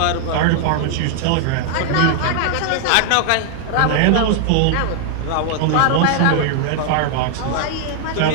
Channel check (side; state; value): both; different; correlation 0.00